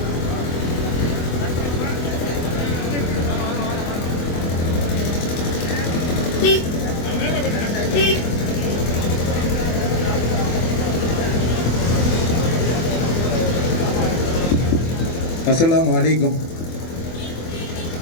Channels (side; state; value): right; late; 24 ms